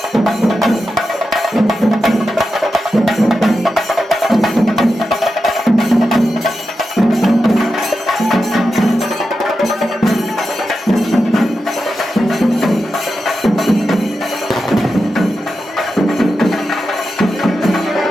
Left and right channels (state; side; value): normal; both; correlation 0.90